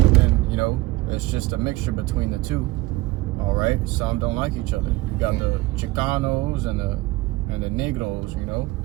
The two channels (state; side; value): quieter; left; 19.5 dB